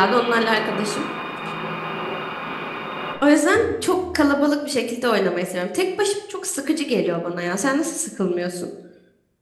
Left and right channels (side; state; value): both; identical; correlation 1.00